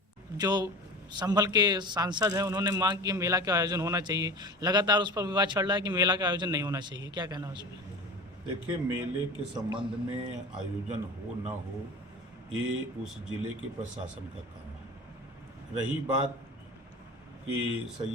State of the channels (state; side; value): normal; both; correlation 0.34